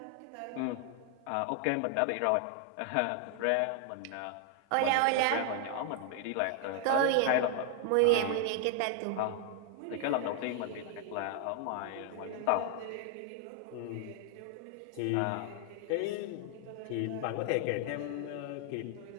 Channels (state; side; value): different; both; correlation 0.00